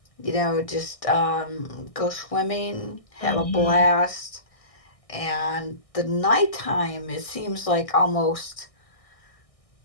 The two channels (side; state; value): right; late; 1.6 ms